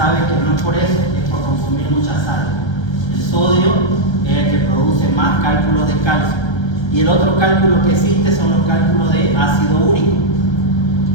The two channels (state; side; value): late; right; 1.3 ms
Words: que no es por eso, es por consumir mucha sal. El sodio es el que produce más cálculos de calcio. Y el otro cálculo que existe son los cálculos de ácido úrico.